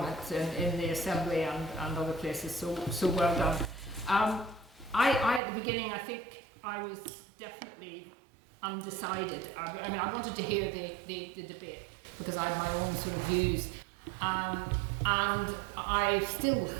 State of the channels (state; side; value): drops out; left; at 5.4 s